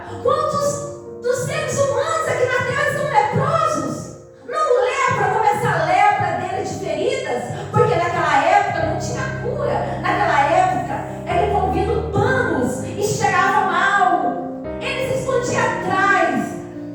Quantos dos seres humanos aqui na terra estão leprosos? Não lepra como essa lepra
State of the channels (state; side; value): identical; both; correlation 1.00